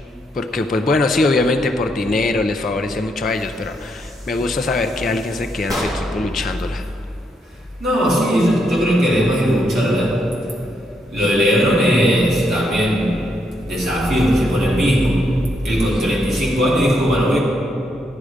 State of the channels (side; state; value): both; normal; correlation 0.77